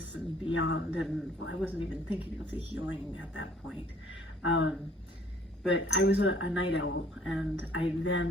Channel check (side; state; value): both; normal; correlation 0.58